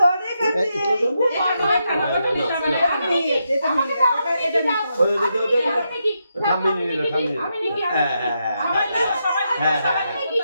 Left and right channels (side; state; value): both; inverted; correlation -0.83